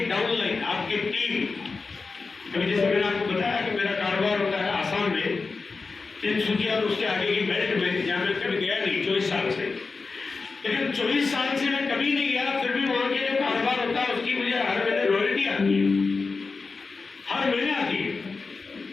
डाउनलाइन, आपकी टीम। अभी जैसे मैंने आपको बताया कि मेरा कारोबार होता है आसाम में, तिनसुकिया और उसके आगे की बेल्ट में, जहाँ मैं कभी गया नहीं 24 साल से, लेकिन 24 साल से मैं कभी नहीं गया, फिर भी वहां के जो कारोबार होता है उसकी मुझे हर महीने रॉयल्टी आती है, हर महीने आती है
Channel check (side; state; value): right; quieter; 4.3 dB